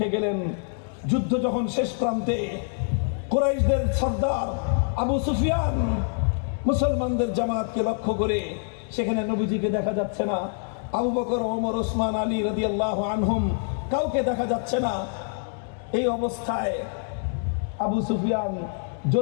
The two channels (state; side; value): silent; right; 61 dB below the other